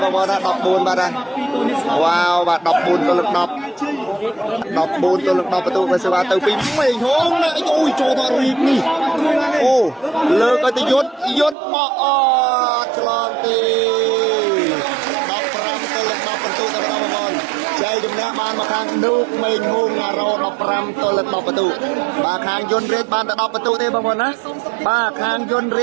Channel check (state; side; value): drops out; left; at 11.6 s